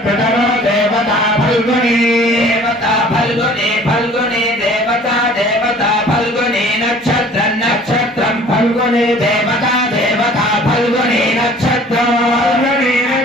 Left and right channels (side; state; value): both; normal; correlation 0.50